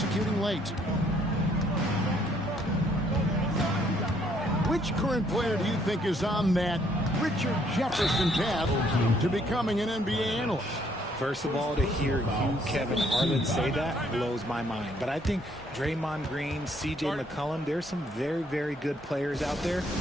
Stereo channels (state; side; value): normal; both; correlation 0.67